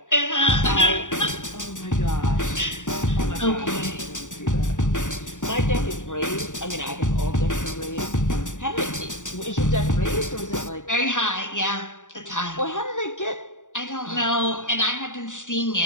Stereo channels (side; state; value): right; late; 0.86 ms